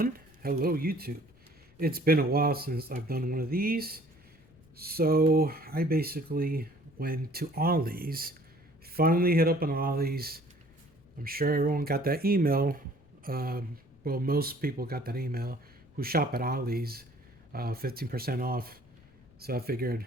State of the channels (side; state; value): left; noise; rumble, 28 dB below the sound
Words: Hello YouTube. It's been a while since I've done one of these. So I basically went to Ollie's. Finally hit up on Ollie's. I'm sure everyone got that email. Well, most people got that email who shop at Ollie's. 15% off. So I figured